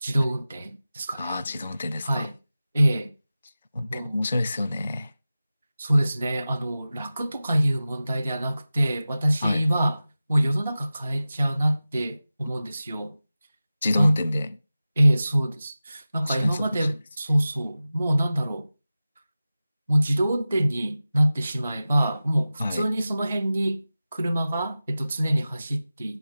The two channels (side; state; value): both; inverted; correlation -0.95